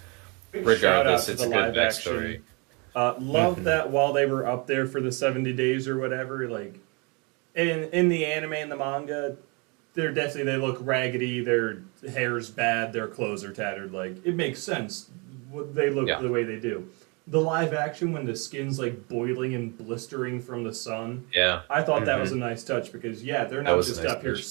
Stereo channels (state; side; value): quieter; left; 30.9 dB